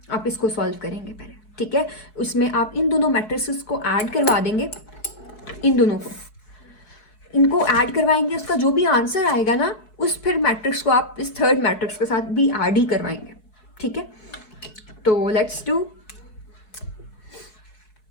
आप इसको सॉल्व करेंगे पहले। ठीक है, उसमें आप इन दोनों मैट्रिसेस को ऐड करवा देंगे, इन दोनों को इनको ऐड करवाएंगे। उसका जो भी आंसर आएगा ना उस फिर मैट्रिक्स को आप इस थर्ड मैट्रिक्स के साथ भी ऐड ही करवाएंगे। ठीक है, तो लेट्स डू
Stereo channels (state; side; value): late; right; 4.7 ms